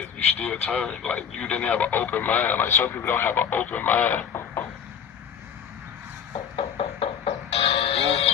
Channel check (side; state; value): right; quieter; 7.9 dB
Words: you still turn. Like, you didn't have an open mind. Like, some people don't have an open mind.